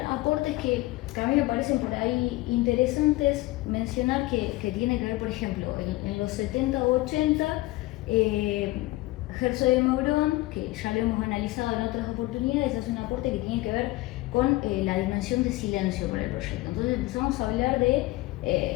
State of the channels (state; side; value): quieter; right; 19.5 dB